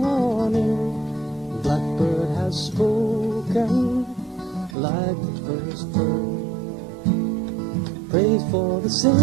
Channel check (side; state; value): left; drops out; at 4.8 s